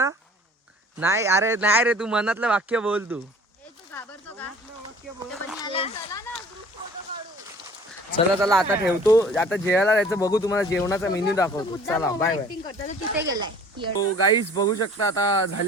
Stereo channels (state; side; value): normal; both; correlation 0.49